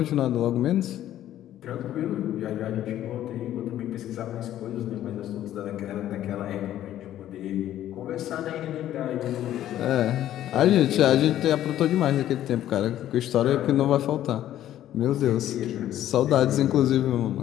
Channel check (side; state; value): right; quieter; 12.4 dB